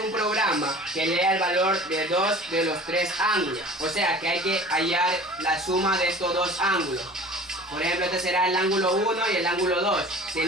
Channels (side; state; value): both; normal; correlation 0.43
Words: programa que lea el valor de dos de los tres ángulos. O sea que hay que hallar la suma de estos dos ángulos. Por ejemplo, este será el ángulo 1 y el ángulo 2.